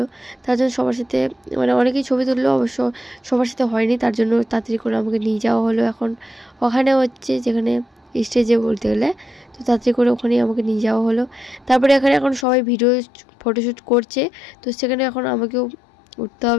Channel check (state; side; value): drops out; right; at 12.5 s